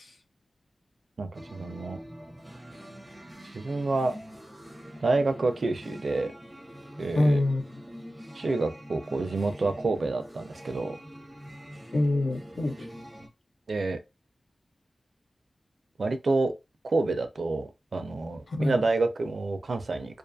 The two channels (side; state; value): both; normal; correlation 0.94